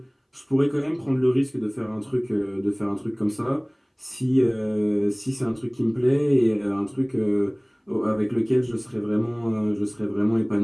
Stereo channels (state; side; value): identical; both; correlation 1.00